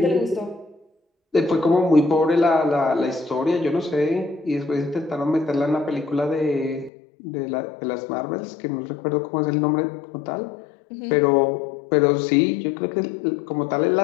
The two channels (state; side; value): drops out; right; at 6.9 s